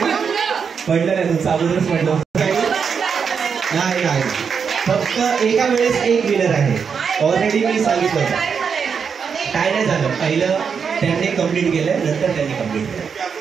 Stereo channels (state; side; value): quieter; left; 6.3 dB